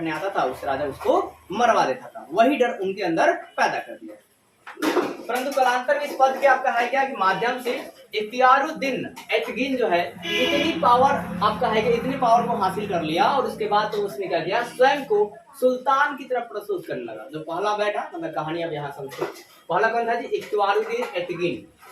आता था उस राजा उसको मरवा देता था, वही डर उनके अंदर पैदा कर दिया। परंतु कालांतर में इस पद के आपका है क्या कि माध्यम से इख्तियारुद्दीन एतगिन जो है इतनी पावर आपका है कि इतनी पावर को हासिल कर लिया और उसके बाद तो उसने क्या किया, स्वयं को सुल्तान की तरफ प्रस्तुत करने लगा। जो पहला बैठा, मतलब कहानी अब यहाँ समझो। पहला कौन था जी? इख्तियारुद्दीन एतगिन,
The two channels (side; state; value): both; identical; correlation 1.00